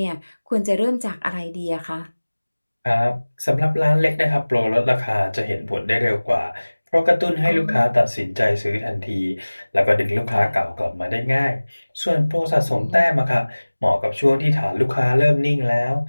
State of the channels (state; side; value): inverted; both; correlation -1.00